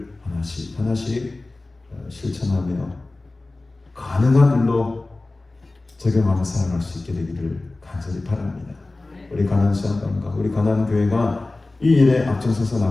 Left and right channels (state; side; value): quieter; right; 3.1 dB